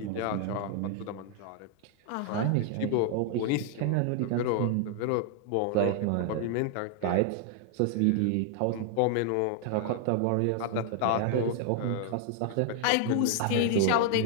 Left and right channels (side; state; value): both; different; correlation 0.00